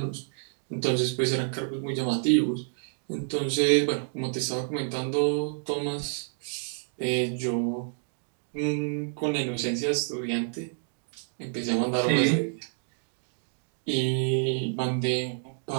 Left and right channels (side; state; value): left; silent; 59 dB below the other